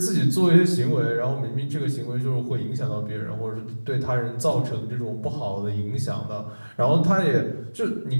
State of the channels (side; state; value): both; inverted; correlation -1.00